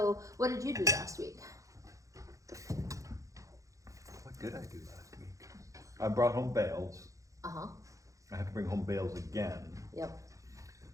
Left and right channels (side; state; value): left; late; 0.16 ms